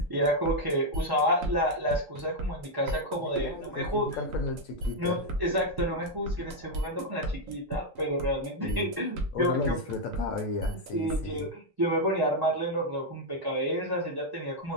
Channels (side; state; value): both; normal; correlation 0.00